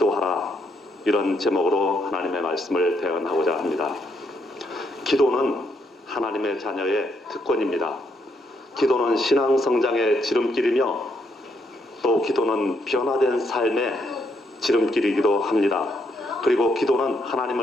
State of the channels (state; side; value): normal; both; correlation 0.76